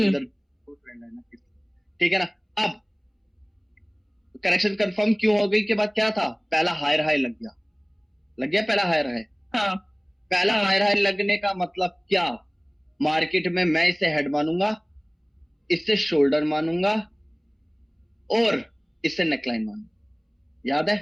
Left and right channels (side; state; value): both; identical; correlation 1.00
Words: ट्रेंड है ना, ठीक है ना। अब करेक्शन कंफर्म क्यों हो गई के बाद क्या था? पहला हायर हाई लग गया, लग गया पहला हायर हाई। हाँ। पहला हाँ। हायर हाई लगने का मतलब क्या? मार्केट में मैं इसे हेड मानूंगा, इससे शोल्डर मानूंगा, और इससे नेकलाइन मानूंगा। याद है?